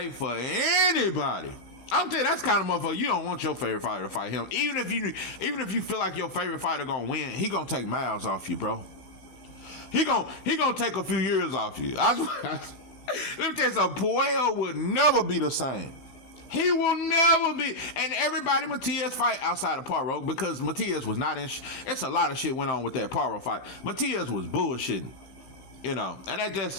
for anybody. I'm telling you, that's kind of motherfucker. You don't want your favorite fighter to fight him. Even if you feel like your favorite fighter gonna win, he gonna take miles off you, bro. He gonna take a few years off you. Let me tell you something. Puello would never be the same. He will never be. And everybody Matias fight outside of Poirot, because Matias was not in. It's a lot of shit went on with that Poirot fight. Matias was bullshitting, and that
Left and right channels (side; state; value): right; late; 16 ms